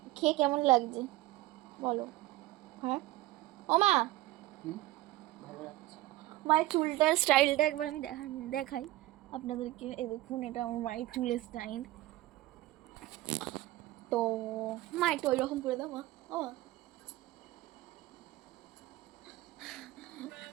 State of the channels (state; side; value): quieter; left; 17.6 dB